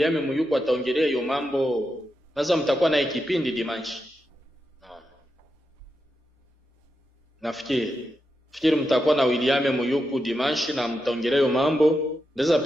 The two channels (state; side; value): normal; both; correlation 0.87